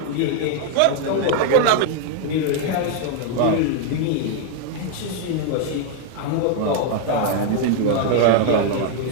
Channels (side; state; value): both; different; correlation 0.00